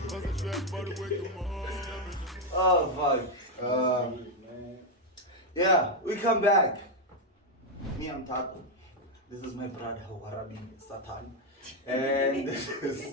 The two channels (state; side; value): normal; both; correlation 0.03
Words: Plus the trap, but wake 'em up. Oh fuck. Yeah, we come back. Me, I'm Taco. This is my brother Warabi Satan. And this